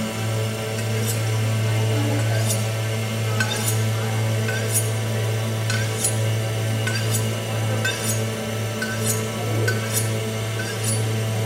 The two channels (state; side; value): identical; both; correlation 1.00